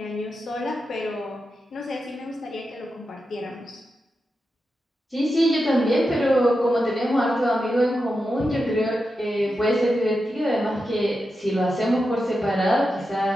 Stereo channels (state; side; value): normal; both; correlation 0.89